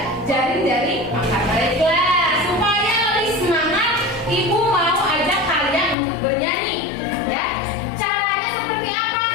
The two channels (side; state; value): right; drops out; at 6.0 s